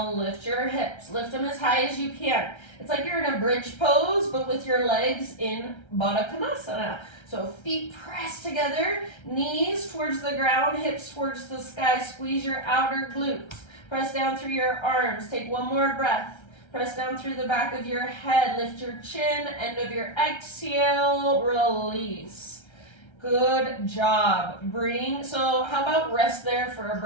lift your hips. Lift them as high as you can. It's like you're in a bridge pose, but with your legs in Baddha Konasana. So feet press together, knees towards the ground, hips towards the sky. Squeeze your outer glutes. Press down through your arms. Take one more breath. Press down through the back of your head. Lift your chin. End of your exhale. Release. Good job. So how about rest there for a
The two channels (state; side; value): late; right; 1.3 ms